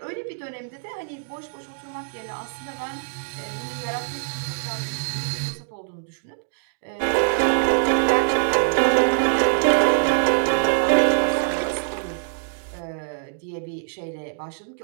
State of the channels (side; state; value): left; silent; digital silence